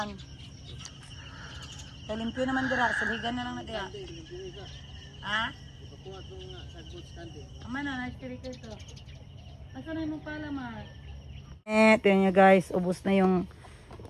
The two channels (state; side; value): identical; both; correlation 1.00